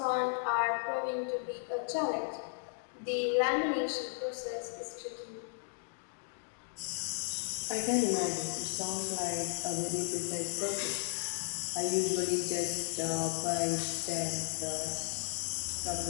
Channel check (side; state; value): right; silent; digital silence